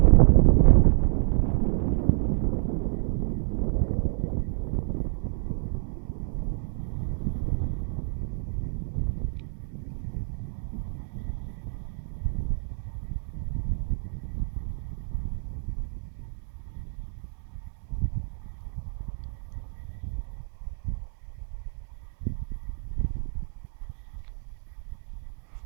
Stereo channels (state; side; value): silent; left; digital silence